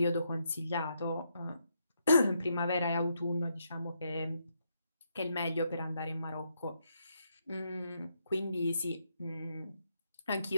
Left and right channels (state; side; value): inverted; both; correlation -0.78